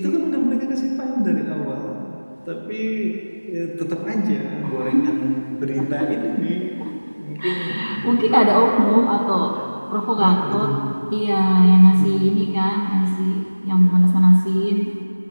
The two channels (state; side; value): inverted; both; correlation -1.00